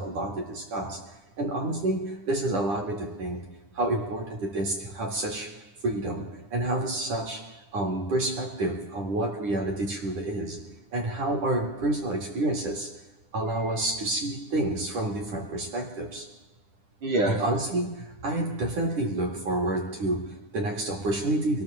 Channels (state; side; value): late; left; 10 ms